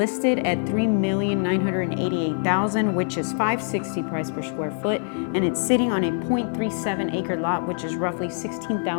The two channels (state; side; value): silent; right; digital silence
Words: at $3,988,000, which is $560 price per square foot, and it's sitting on a 0.37 acre lot, which is roughly